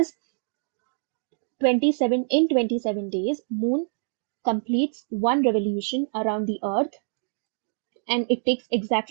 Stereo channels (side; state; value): left; silent; digital silence